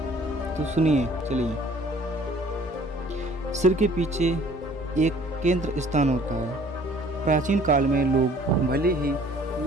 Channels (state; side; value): normal; both; correlation 0.54